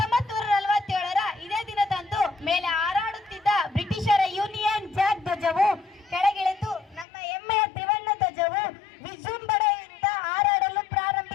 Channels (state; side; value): drops out; right; at 7.1 s